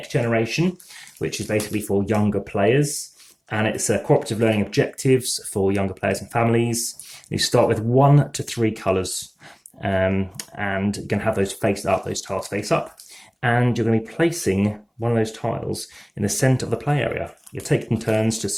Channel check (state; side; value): identical; both; correlation 1.00